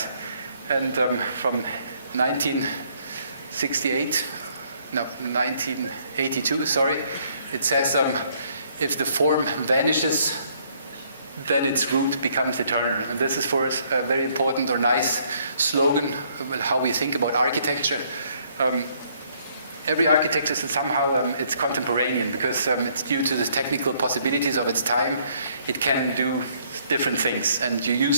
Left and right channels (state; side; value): inverted; both; correlation -0.66